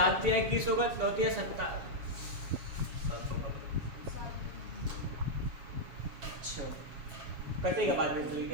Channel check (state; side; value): late; left; 7.2 ms